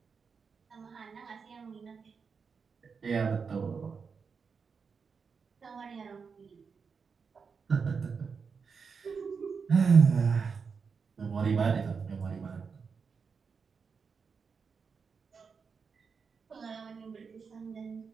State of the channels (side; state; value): left; quieter; 5.6 dB